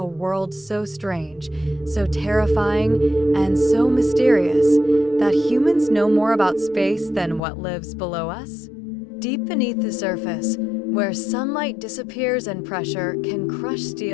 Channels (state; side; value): drops out; right; at 7.4 s